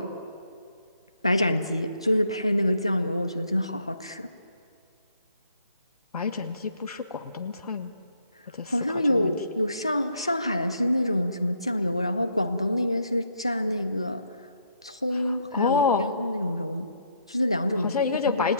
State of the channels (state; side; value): inverted; both; correlation -0.71